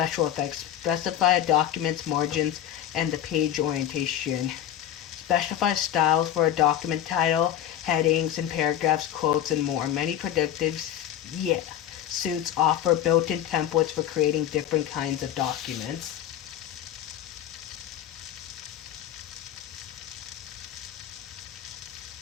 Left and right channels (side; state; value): right; quieter; 11.1 dB